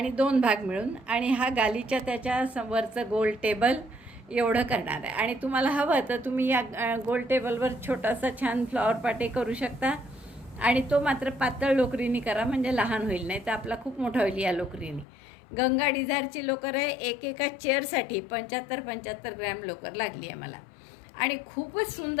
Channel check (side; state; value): right; drops out; at 15.1 s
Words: 2 भाग मिळून आणि हा गालीच्या त्याच्या वरचं गोल टेबल एवढं करणार आहे. आणि तुम्हाला हवं तर तुम्ही या गोल टेबलवर छोटासा छान फ्लॉवर पाटे करू शकता. आणि तो मात्र पातळ लोकरीने करा, म्हणजे लहान होईल, नाही तर आपला खूप मोठा होईल या लोकरीने. गंगा डिझायरची लोकर आहे. एका चेअरसाठी 75 ग्रॅम लोकर लागली आहे मला. आणि खूपच